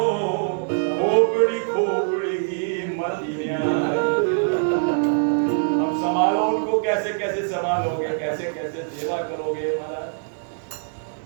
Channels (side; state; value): left; silent; 62 dB below the other